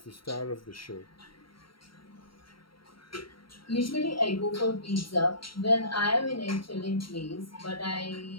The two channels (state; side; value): late; right; 0.73 ms